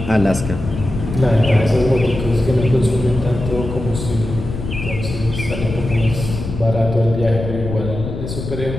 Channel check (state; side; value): noise; left; rumble, 7 dB below the sound